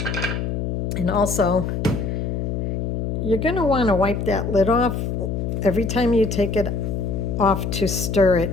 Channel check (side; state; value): left; noise; hum, 2 dB below the sound